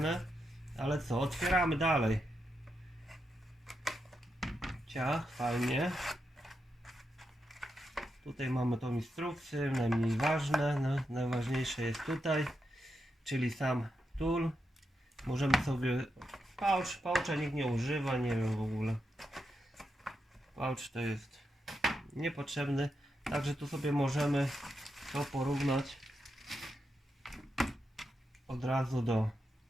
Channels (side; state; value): both; normal; correlation 0.85